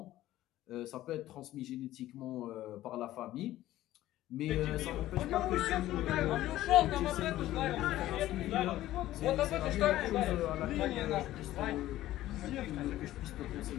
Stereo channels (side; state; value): right; quieter; 14.7 dB